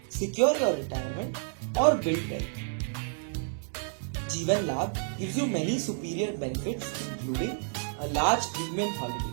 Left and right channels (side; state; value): left; silent; digital silence